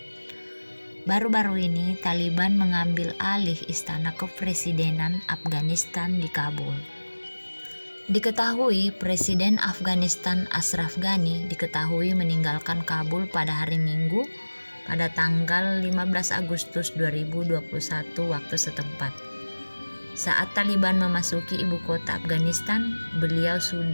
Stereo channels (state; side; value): inverted; both; correlation -1.00